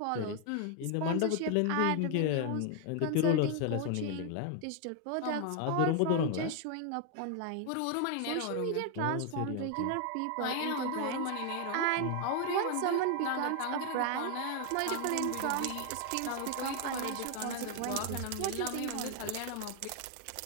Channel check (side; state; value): both; different; correlation 0.00